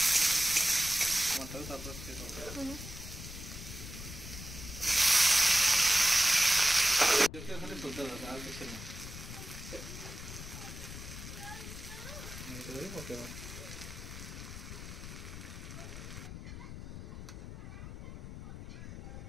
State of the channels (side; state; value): left; noise; rumble, 10 dB below the sound